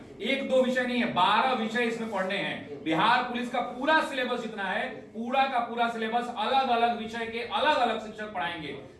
एक दो विषय नहीं है, 12 विषय इसमें पढ़ने हैं। बिहार पुलिस का पूरा सिलेबस जितना है, पूरा का पूरा सिलेबस, अलग अलग विषय के अलग अलग शिक्षक पढ़ाएंगे।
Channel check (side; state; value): both; identical; correlation 1.00